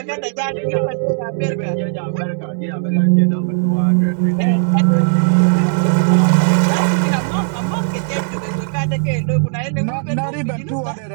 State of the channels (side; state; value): left; silent; 68 dB below the other